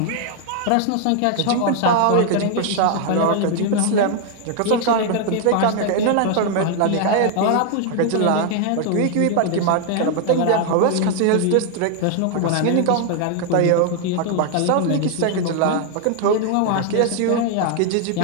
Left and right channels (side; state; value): both; different; correlation 0.00